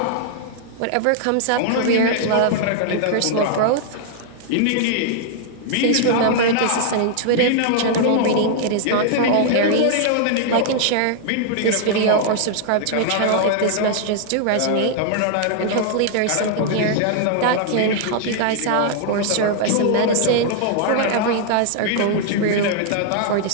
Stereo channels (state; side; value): different; both; correlation -0.01